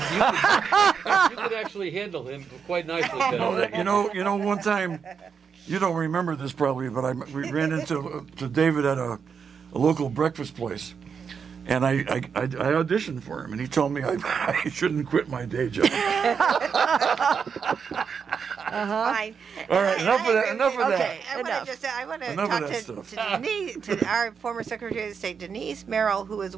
actually handle him quite nicely. One time, you don't remember this probably, but we ran into David at a local breakfast place, and I auditioned for him, and he told me I shouldn't quit my day job. Fine. All right, enough of that. Okay. I want to Enough of talk that to Denise, to our former Secretary of State, Denise Merrill, who has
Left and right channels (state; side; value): quieter; left; 6.4 dB